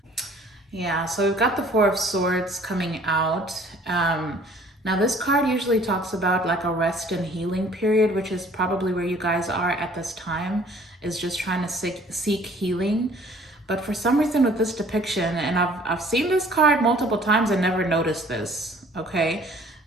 Yeah, so we've got the Four of Swords coming out. Now this card usually talks about like a rest and healing period, which is probably where you guys are at this time, is just trying to seek healing. But for some reason with this depiction, and I've seen this card multiple times and never noticed this, okay?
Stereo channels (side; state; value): both; normal; correlation 0.54